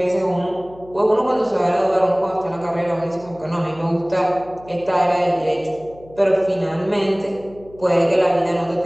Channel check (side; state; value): left; noise; hum, 22 dB below the sound